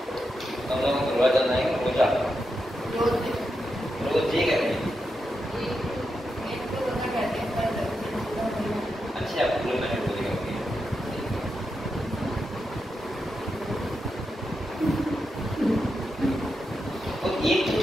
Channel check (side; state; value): both; normal; correlation 0.86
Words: हम लोग रोज जाना है, रोज ये कहते हैं। अच्छा पूरे मैंने बोलेगा तो